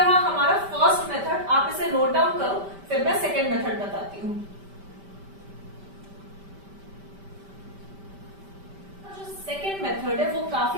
हमारा फर्स्ट मेथड, आप इसे नोट डाउन करो, फिर मैं सेकेंड मेथड बताती हूँ। जो सेकेंड मेथड है वो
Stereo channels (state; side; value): late; left; 5.1 ms